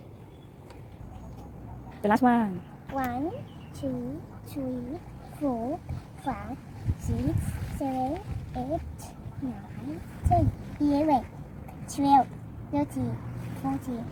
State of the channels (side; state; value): both; identical; correlation 1.00